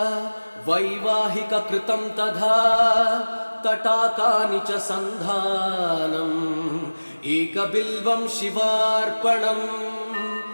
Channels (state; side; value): inverted; both; correlation -1.00